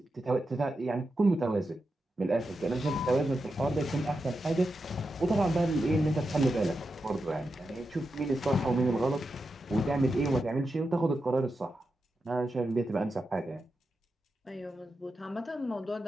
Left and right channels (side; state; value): both; normal; correlation 0.88